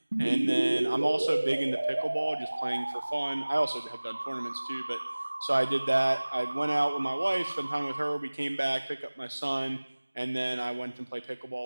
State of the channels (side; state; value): both; inverted; correlation -1.00